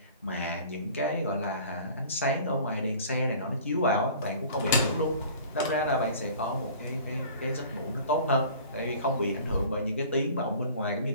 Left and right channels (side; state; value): both; inverted; correlation -0.46